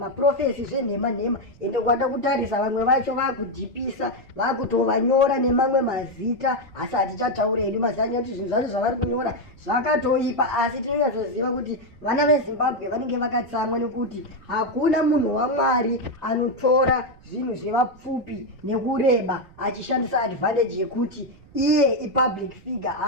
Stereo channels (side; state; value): right; noise; rumble, 24 dB below the sound